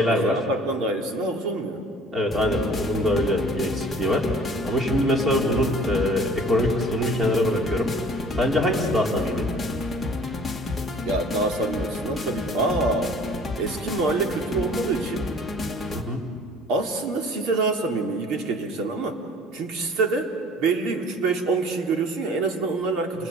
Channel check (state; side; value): normal; both; correlation 0.50